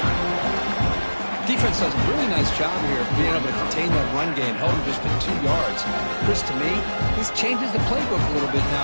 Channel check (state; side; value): inverted; both; correlation -1.00